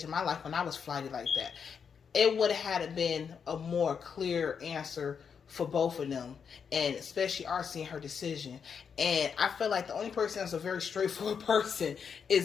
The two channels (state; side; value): quieter; right; 6.7 dB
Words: in my life when I was flighted like that. It would have had been a more clear answer for both of them, and especially RC and her decision. And I feel like the only person that's a very straightforward person